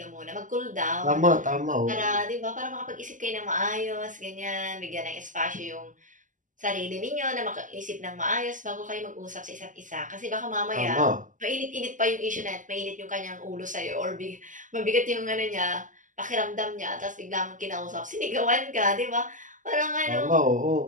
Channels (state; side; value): late; left; 0.37 ms